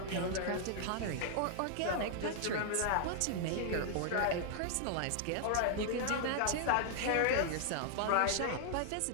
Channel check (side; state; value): both; different; correlation -0.01